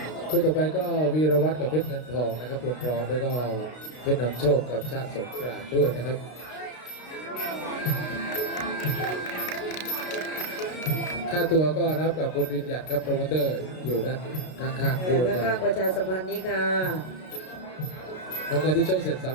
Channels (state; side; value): late; right; 32 ms